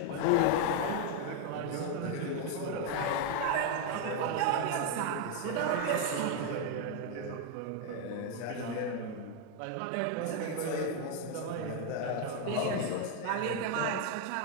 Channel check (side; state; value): both; different; correlation 0.01